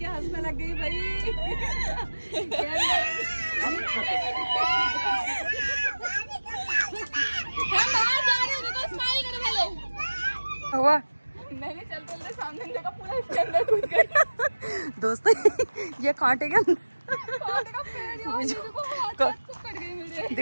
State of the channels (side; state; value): both; inverted; correlation -1.00